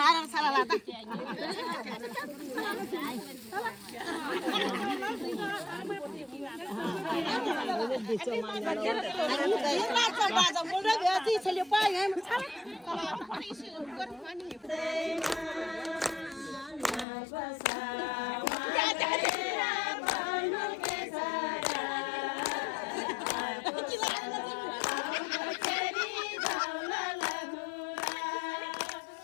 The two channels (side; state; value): right; drops out; at 17.1 s